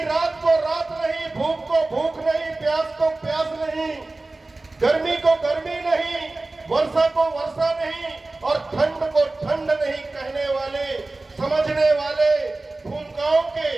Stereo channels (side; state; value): left; quieter; 3.1 dB